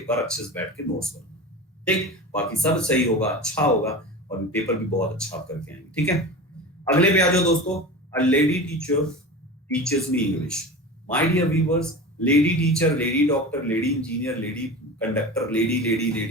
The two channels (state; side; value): normal; both; correlation 0.31